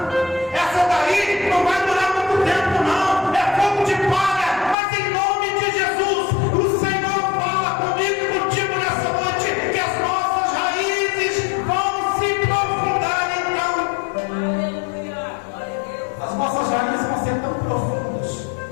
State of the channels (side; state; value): right; drops out; at 4.8 s